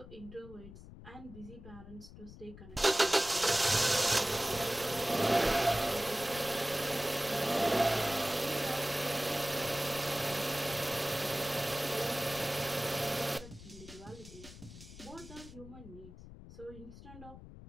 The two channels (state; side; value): noise; left; rumble, 16 dB below the sound